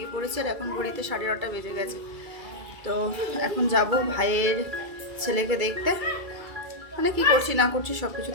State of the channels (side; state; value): left; late; 2.3 ms